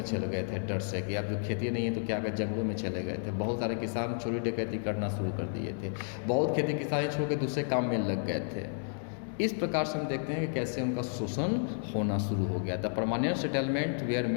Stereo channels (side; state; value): right; silent; 57 dB below the other